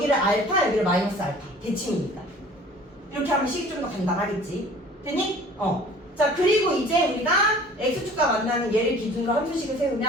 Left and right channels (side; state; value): both; normal; correlation 0.48